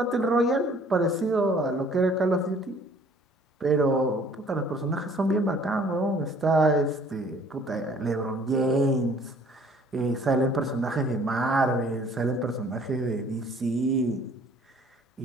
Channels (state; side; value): normal; both; correlation 0.56